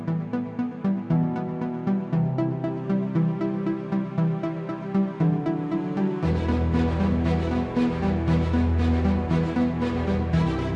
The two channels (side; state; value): both; identical; correlation 1.00